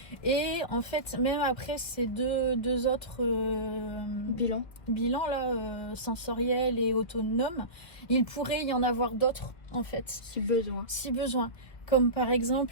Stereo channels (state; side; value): late; right; 2.0 ms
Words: Et en fait, même après ces deux autres bilans là, sensoriels et autonomes, il pourrait y en avoir d'autres en fait. Si besoin. Comme par